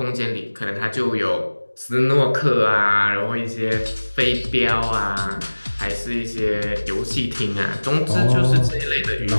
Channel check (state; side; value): inverted; both; correlation -1.00